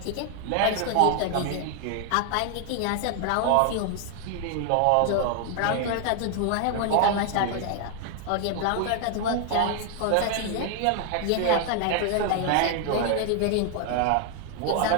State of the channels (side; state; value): both; different; correlation 0.00